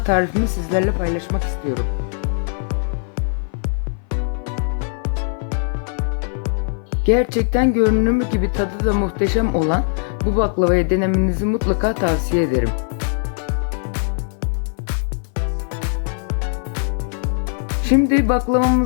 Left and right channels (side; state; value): right; silent; 57 dB below the other